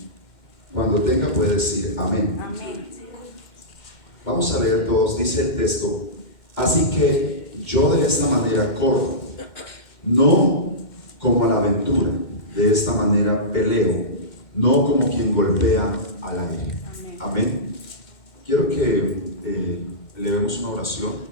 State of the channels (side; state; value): right; late; 2.1 ms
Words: Cuando tenga puede decir amén. Amén. Vamos a leer todos. Dice el texto: así que yo de esta manera corro, no como a la aventura, de esta manera peleo, no como quien golpea al aire. Amén. Quiero que elevemos una oración